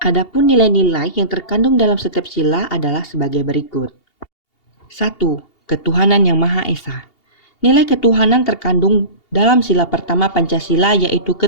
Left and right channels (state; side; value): late; right; 2.8 ms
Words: Adapun nilai-nilai yang terkandung dalam setiap sila adalah sebagai berikut. 1. Ketuhanan yang Maha Esa. Nilai ketuhanan terkandung dalam sila pertama Pancasila yaitu